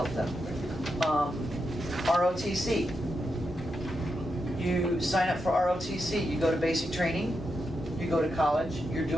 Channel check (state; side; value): normal; both; correlation 0.85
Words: them. ROTC. You sign up for ROTC, you go to basic training, you go to college, you're